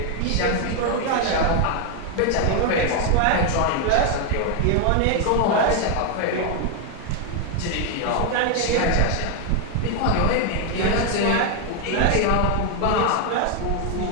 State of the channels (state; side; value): different; both; correlation 0.00